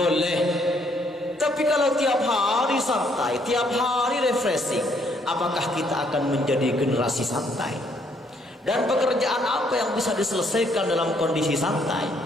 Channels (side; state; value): both; normal; correlation 0.68